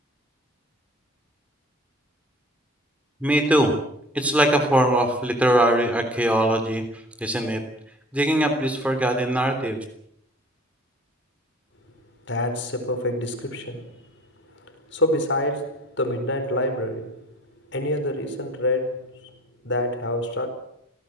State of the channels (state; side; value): normal; both; correlation 0.47